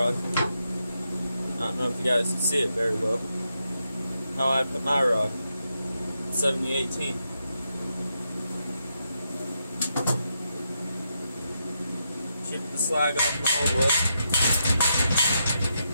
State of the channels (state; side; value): inverted; both; correlation -0.83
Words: I don't know if you guys can see it very well. How I put my rod, 7018. Chip the slag off my old weld.